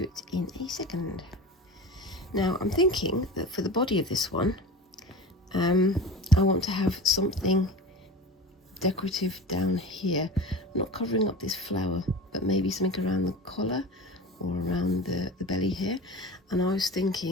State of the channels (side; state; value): both; normal; correlation 0.32